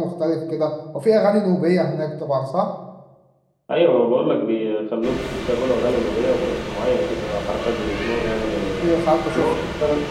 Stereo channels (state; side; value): identical; both; correlation 1.00